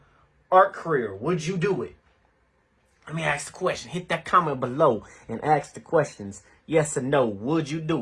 art career? Would you do it? Let me ask the question. Hit that comment below and ask the questions. Yes or no. Would you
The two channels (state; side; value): identical; both; correlation 1.00